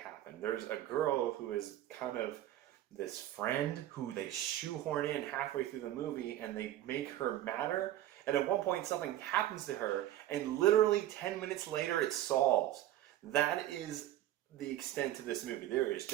There's a girl who is kind of this friend who they shoehorn in halfway through the movie, and they make her matter. And at one point something happens to her, and literally 10 minutes later it solves. That is the extent of this movie. There is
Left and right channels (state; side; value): quieter; left; 13.2 dB